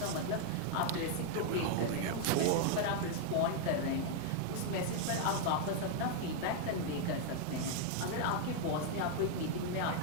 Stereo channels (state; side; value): different; both; correlation 0.00